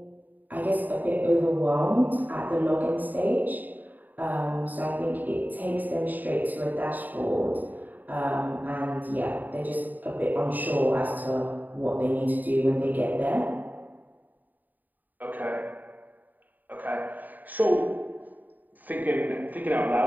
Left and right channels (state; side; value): late; left; 0.084 ms